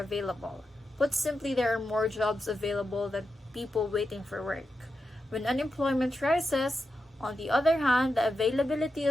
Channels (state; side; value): normal; both; correlation 0.88